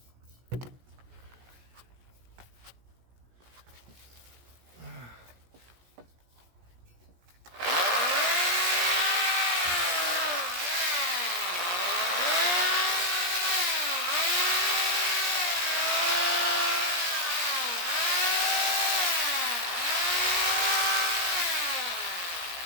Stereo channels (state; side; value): late; left; 17 ms